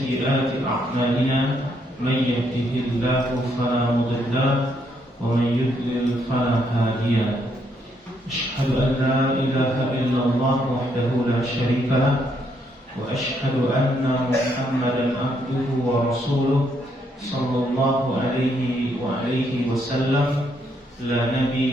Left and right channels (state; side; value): normal; both; correlation 0.74